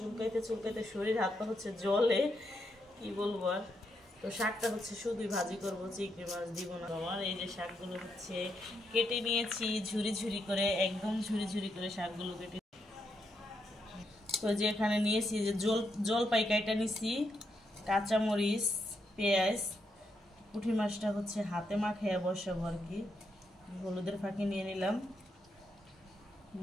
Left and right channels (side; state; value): both; normal; correlation 0.80